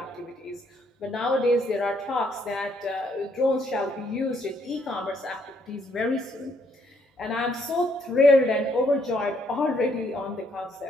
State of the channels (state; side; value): normal; both; correlation 0.70